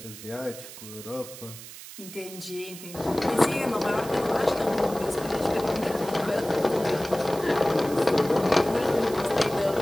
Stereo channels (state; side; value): noise; right; hiss, 14 dB below the sound